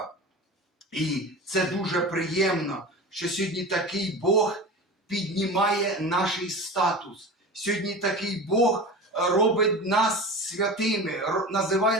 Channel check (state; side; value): normal; both; correlation 0.32